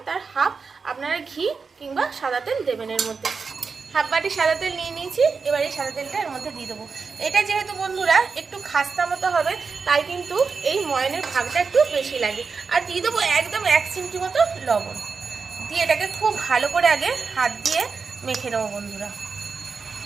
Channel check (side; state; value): left; quieter; 5.0 dB